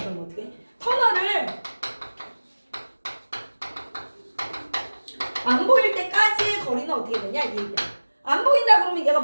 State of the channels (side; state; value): both; inverted; correlation -1.00